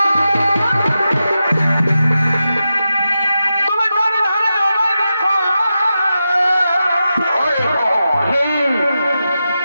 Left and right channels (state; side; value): inverted; both; correlation -0.90